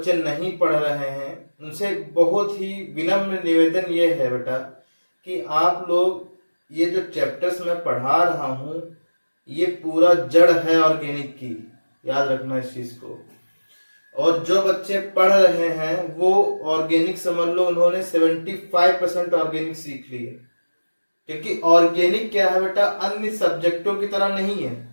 नहीं पढ़ रहे हैं उनसे बहुत ही विनम्र निवेदन ये है बेटा कि आप लोग ये जो चैप्टर्स मैं पढ़ा रहा हूं ये पूरा जड़ है ऑर्गेनिक की, याद रखना इस चीज को। और जो बच्चे पढ़ रहे हैं वो ऑर्गेनिक समझ लो उन्होंने 75% ऑर्गेनिक सीख ली है, क्योंकि ऑर्गेनिक क्या है बेटा अन्य सब्जेक्टों की तरह नहीं है,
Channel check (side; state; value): both; inverted; correlation -1.00